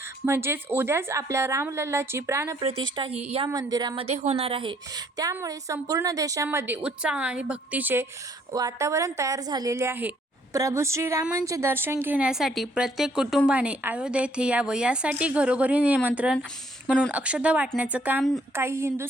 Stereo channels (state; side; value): normal; both; correlation 0.65